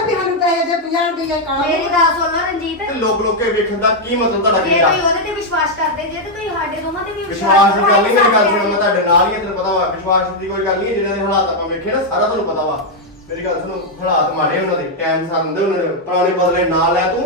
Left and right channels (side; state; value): both; normal; correlation -0.01